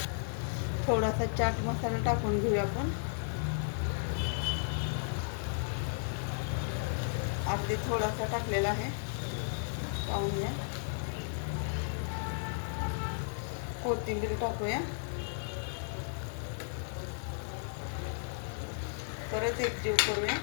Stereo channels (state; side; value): silent; right; 55 dB below the other